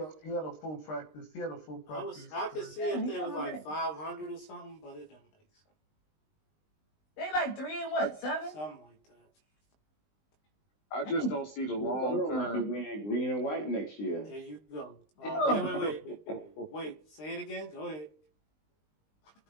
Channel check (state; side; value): late; right; 20 ms